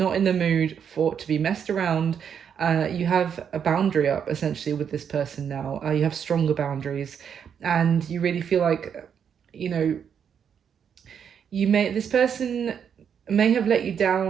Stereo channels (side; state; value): left; quieter; 7.7 dB